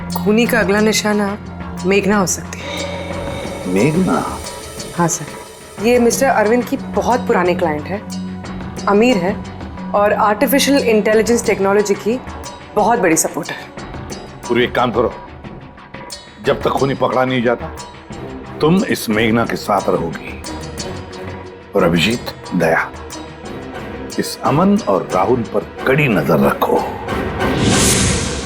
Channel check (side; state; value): both; identical; correlation 1.00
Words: खूनी का अगला निशाना मेघना हो सकती है। मेघना? हाँ सर, ये मिस्टर अरविंद की बहुत पुरानी क्लाइंट है, अमीर है और आर्टिफिशियल इंटेलिजेंस टेक्नोलॉजी की बहुत बड़ी सपोर्टर। पूरी एक काम करो, जब तक खूनी पकड़ा नहीं जाता तुम इस मेघना के साथ रहोगी, और अभिजीत, दया, इस अमन और राहुल पर कड़ी नजर रखो।